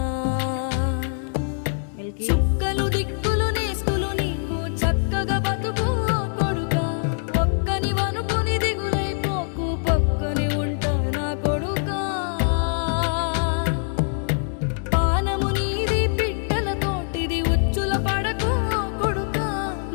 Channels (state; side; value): silent; right; digital silence